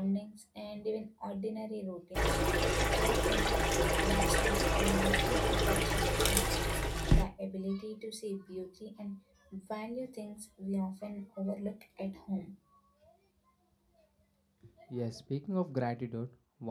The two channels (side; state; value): both; identical; correlation 1.00